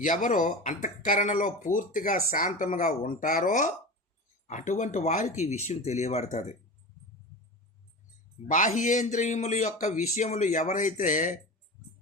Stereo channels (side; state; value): both; normal; correlation 0.29